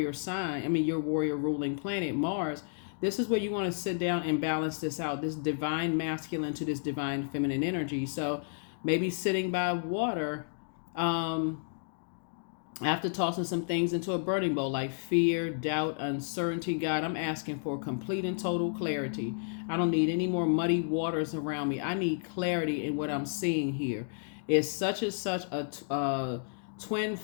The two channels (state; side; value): silent; right; digital silence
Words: sign, your warrior ruling planet, Mars. This is where you want to sit down and balance this out, this divine masculine to this divine feminine energy. So maybe sitting by water, after tossing some things into a burning bowl like fear, doubt, uncertainty. God, I'm asking for complete and total clarity. I don't need any more muddy waters around me. I need clarity in what I'm seeing here. Is such and such a twin